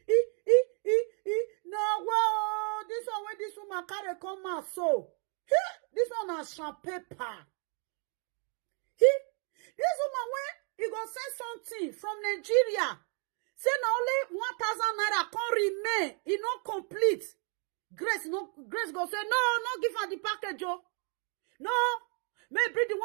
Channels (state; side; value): quieter; left; 39.8 dB